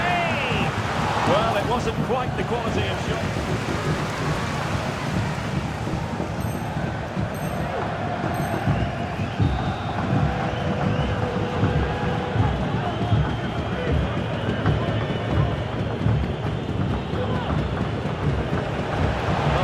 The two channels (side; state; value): both; identical; correlation 1.00